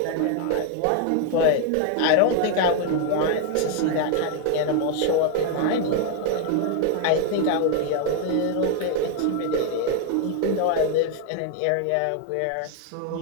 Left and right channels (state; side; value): different; both; correlation 0.00